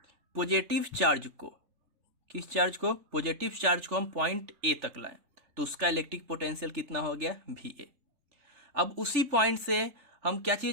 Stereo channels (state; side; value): late; left; 3.4 ms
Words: पॉजिटिव चार्ज को, किस चार्ज को, पॉजिटिव चार्ज को हम पॉइंट ए तक लाएं तो उसका इलेक्ट्रिक पोटेंशियल कितना हो गया, भी ए। अब उसी पॉइंट से हम क्या